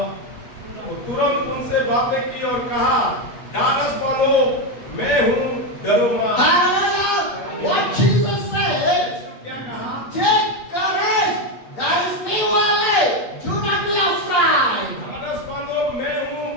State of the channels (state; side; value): late; right; 8.7 ms